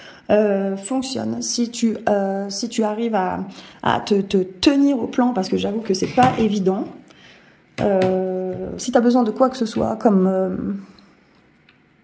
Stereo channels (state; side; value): identical; both; correlation 1.00